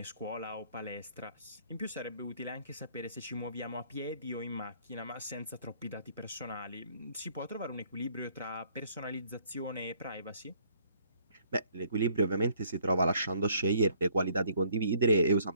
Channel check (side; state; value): both; inverted; correlation -0.62